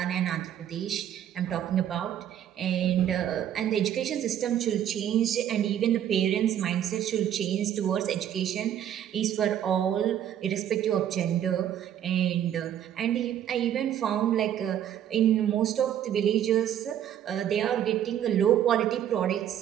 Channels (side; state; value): left; quieter; 10.4 dB